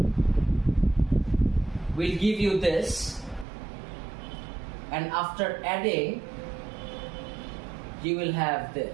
will give you this, and after adding, you will have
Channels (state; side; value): drops out; left; at 3.5 s